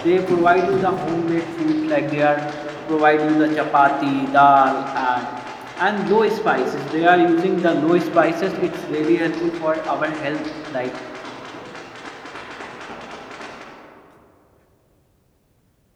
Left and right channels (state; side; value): identical; both; correlation 1.00